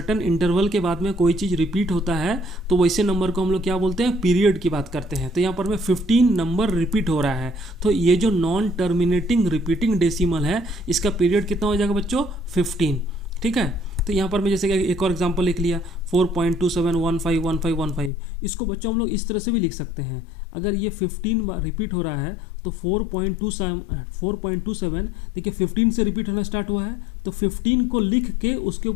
इंटरवल के बाद में कोई चीज़ रिपीट होता है तो वैसे नंबर को हम लोग क्या बोलते हैं, पीरियड की बात करते हैं। तो यहाँ पर में 15 नंबर रिपीट हो रहा है, तो ये जो नॉन टर्मिनेटिंग रिपीटिंग डेसिमल है इसका पीरियड कितना हो जाएगा बच्चों, 15, ठीक है। तो यहाँ पर मैं जैसे कि एक और एग्जांपल लिख लिया 4.27151515। इसको बच्चों हम लोग इस तरह से भी लिख सकते हैं। अगर ये 15 बार रिपीट हो रहा है तो 4.27 देखिए 15 से रिपीट होना स्टार्ट हुआ है, तो 15 को लिख के उसके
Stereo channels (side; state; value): right; drops out; at 18.1 s